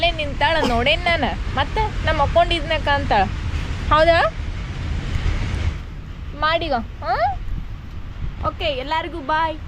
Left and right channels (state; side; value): identical; both; correlation 1.00